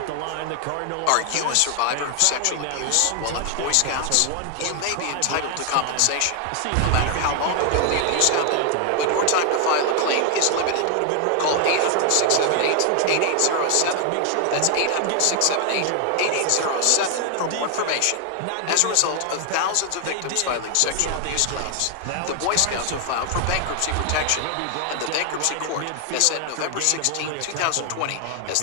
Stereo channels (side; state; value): both; different; correlation 0.00